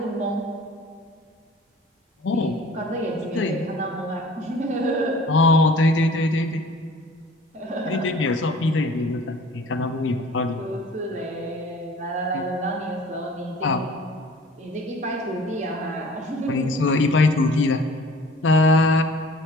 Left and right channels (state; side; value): normal; both; correlation 0.48